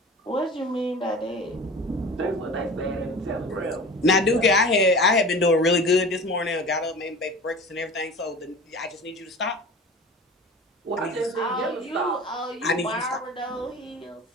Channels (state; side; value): normal; both; correlation 0.37